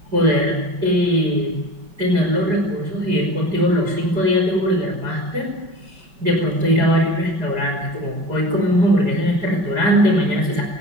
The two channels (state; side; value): late; left; 5.2 ms